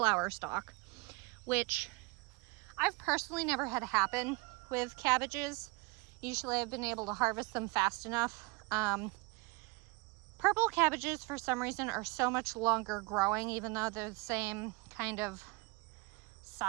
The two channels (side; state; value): left; quieter; 25.6 dB